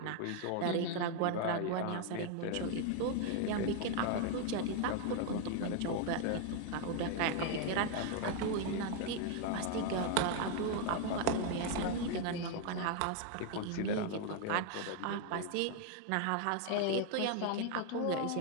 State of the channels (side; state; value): both; different; correlation 0.00